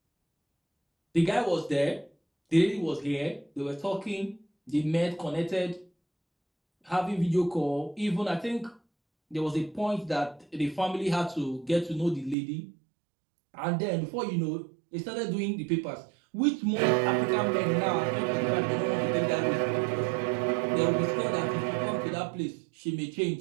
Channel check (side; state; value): left; drops out; at 12.4 s